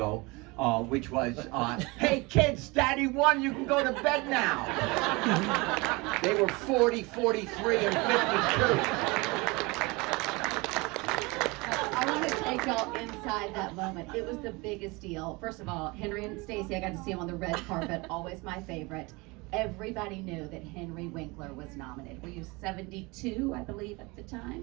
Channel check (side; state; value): left; quieter; 25.3 dB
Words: which was, hey kids, Daddy won, you can go to bed now. They were 40, 43, and 52. I want to take y'all inside that moment. It was the biggest deal. First of all, Henry and Stacy, I got to see them on the red carpet, always my favorite. Everybody knew that Henry Winkler was nominated. Were you 72, I believe, at the